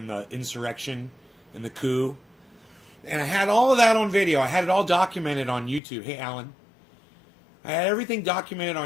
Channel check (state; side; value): drops out; right; at 5.8 s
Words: the insurrection and the coup. And I had all of that on video. I had it all documented on YouTube. Hey, Alan. I had everything documented